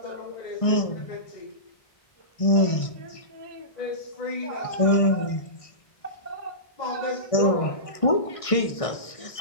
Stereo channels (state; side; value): late; right; 1.6 ms